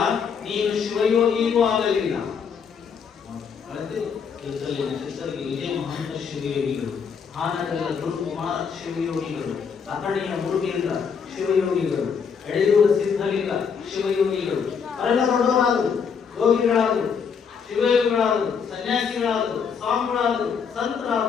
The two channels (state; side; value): quieter; right; 6.4 dB